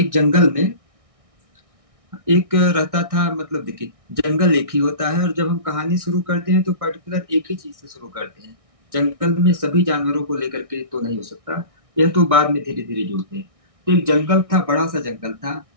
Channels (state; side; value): late; left; 1.6 ms